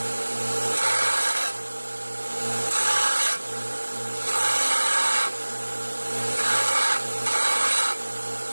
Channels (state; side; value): inverted; both; correlation -1.00